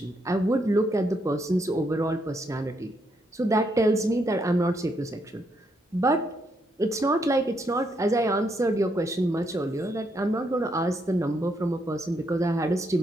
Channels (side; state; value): both; normal; correlation 0.77